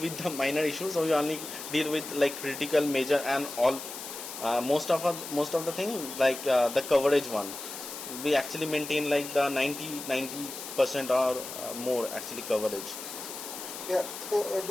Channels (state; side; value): noise; left; hiss, 9 dB below the sound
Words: the minor issues, so we only deal with like critical, major and all. Most of the thing like the coverage one, we actually maintain like the 90% or more actually coverage. Yeah. So